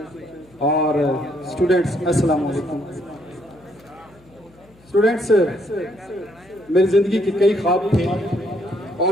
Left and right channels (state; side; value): noise; left; hum, 28 dB below the sound